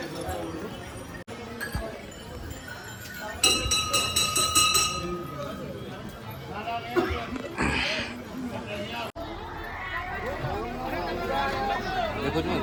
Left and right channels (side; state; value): both; identical; correlation 1.00